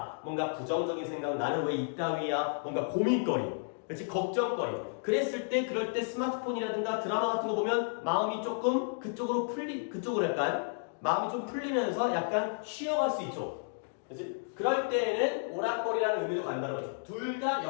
뭔가 부정적인 생각, 나는 왜 이따위야? 뭔가 고민거리, 그렇지? 걱정거리. 그랬을 때, 그럴 때 스마트폰이라든가 드라마 같은 거 보면 마음이 조금 그쪽으로 약간 마음이 좀 풀리면서 약간 쉬어갈 수 있죠. 그렇지? 그럴 때에는 오락거리라는 의미도 간다는 거죠. 둘 다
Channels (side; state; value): right; silent; digital silence